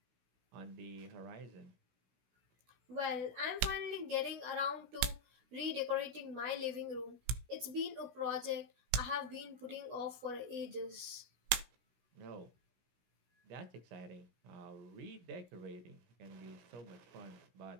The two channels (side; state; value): left; late; 17 ms